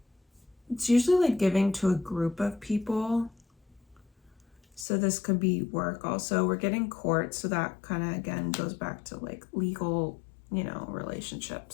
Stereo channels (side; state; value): right; drops out; at 4.9 s